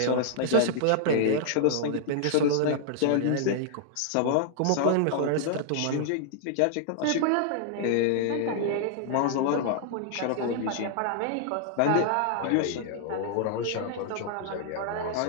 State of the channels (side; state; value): both; different; correlation -0.01